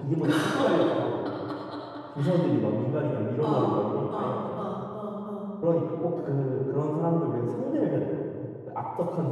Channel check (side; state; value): both; identical; correlation 1.00